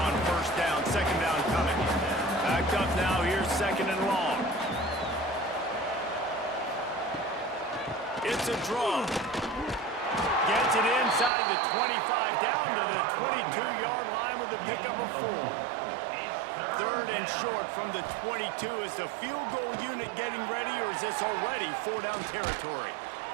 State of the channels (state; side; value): drops out; left; at 11.3 s